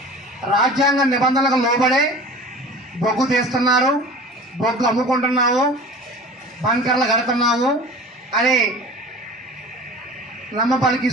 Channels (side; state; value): both; normal; correlation 0.39